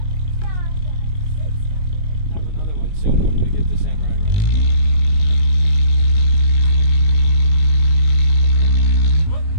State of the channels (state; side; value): late; right; 19 ms